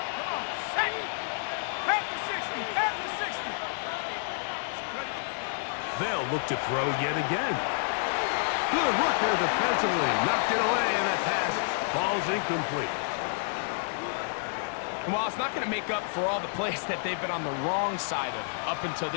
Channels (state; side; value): silent; right; digital silence